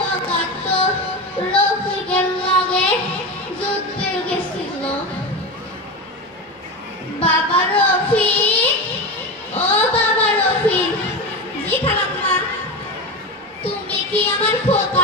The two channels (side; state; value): both; normal; correlation 0.20